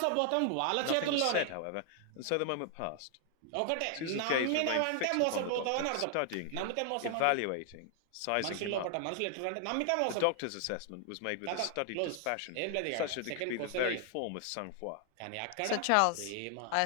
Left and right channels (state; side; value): different; both; correlation 0.00